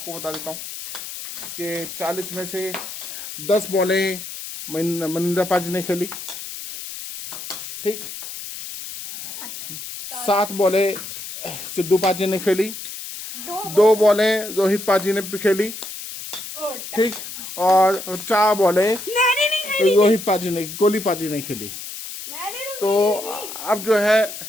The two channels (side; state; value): left; noise; hiss, 10 dB below the sound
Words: बता देता हूँ कि 40 में से 10 बॉलें मनिंदर पाजी ने खेली, ठीक। 7 बॉलें सिद्धू पाजी ने खेली, 2 बॉलें रोहित पाजी ने खेली, ठीक। और 4 बॉलें रोहित पाजी ने, कोहली पाजी ने खेली। तो अब जो है